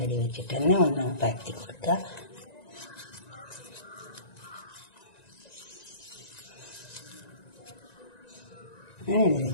അടി വെച്ചിട്ട് തന്നെ ഒന്ന് പരത്തി കൊടുക്കുക. അങ്ങനെ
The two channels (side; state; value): right; late; 1.9 ms